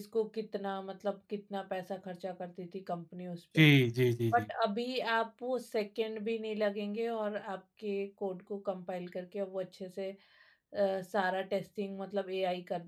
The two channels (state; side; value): identical; both; correlation 1.00